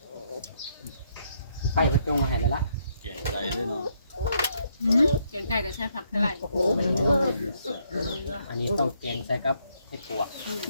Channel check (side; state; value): both; inverted; correlation -0.73